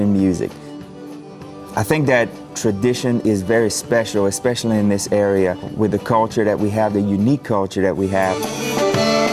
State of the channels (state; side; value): identical; both; correlation 1.00